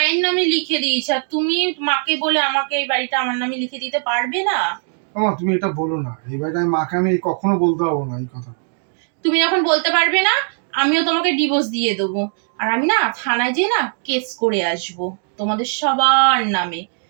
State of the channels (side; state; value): left; silent; 55 dB below the other